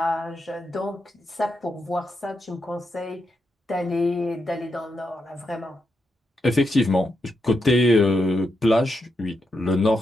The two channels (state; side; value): normal; both; correlation 0.84